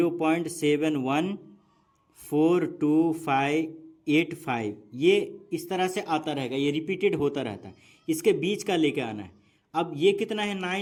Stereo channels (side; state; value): both; identical; correlation 1.00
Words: ये इस तरह से आता रहेगा, ये रिपीटेड होता रहता है। इसके बीच का लेके आना है। अब ये कितना है